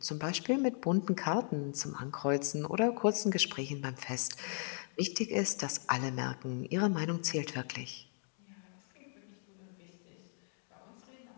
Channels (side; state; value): right; silent; 53 dB below the other